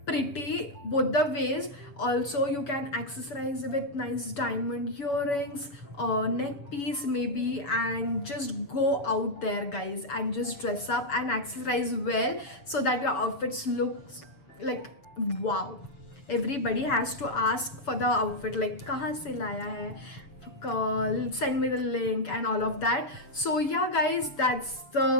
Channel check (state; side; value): late; right; 7.0 ms